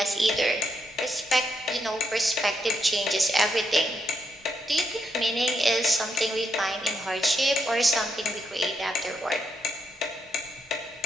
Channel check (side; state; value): both; normal; correlation 0.80